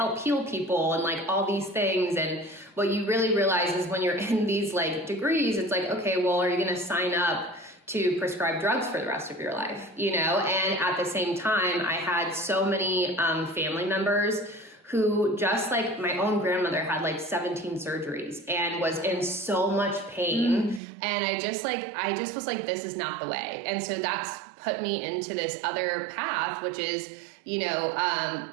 heal people and like all these things. And what you really realize is when you're in these like degrees, it's like, okay, well, are you going to sign up to prescribe drugs for the rest of your life, you know? And at the same time, I had so many family members who, just like my own grandmother, had like 17 surgeries and was in so much pain. And I just was like, this is not the way. And so that's put me into this other path, which is, you know,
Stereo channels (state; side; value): drops out; left; at 20.8 s